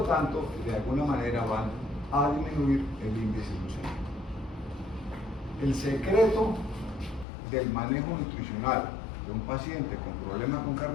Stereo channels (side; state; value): right; drops out; at 7.2 s